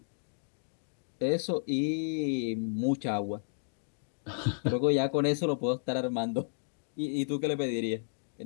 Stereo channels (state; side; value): silent; right; digital silence